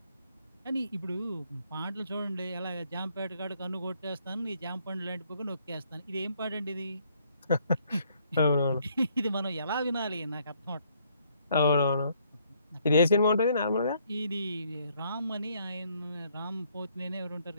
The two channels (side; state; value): both; inverted; correlation -0.69